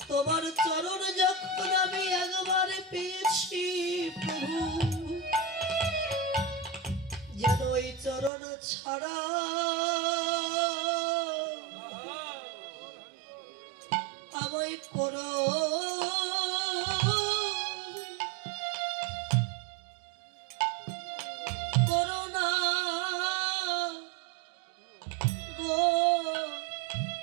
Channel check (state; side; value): drops out; left; at 8.3 s